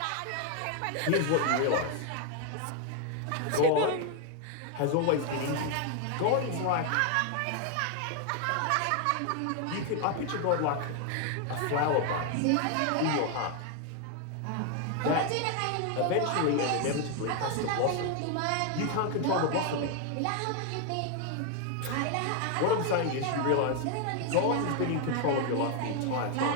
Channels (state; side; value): different; both; correlation 0.01